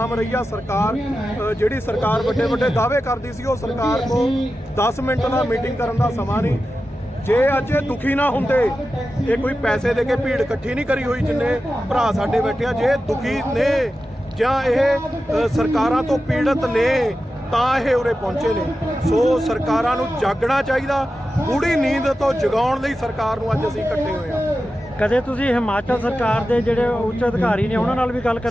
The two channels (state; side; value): normal; both; correlation 0.92